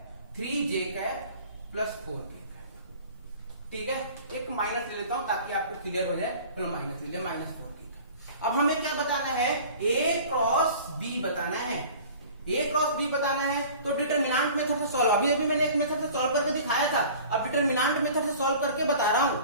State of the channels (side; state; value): both; inverted; correlation -0.44